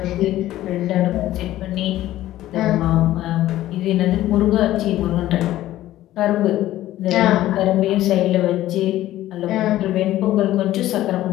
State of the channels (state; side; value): quieter; right; 14.5 dB